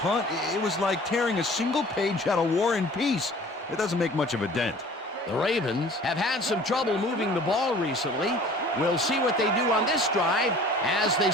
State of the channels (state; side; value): normal; both; correlation 0.47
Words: it was like tearing a single page out of War and Peace. It doesn't make much of a dent. The Ravens have had some trouble moving the ball recently. We'll see what they do on this drive as they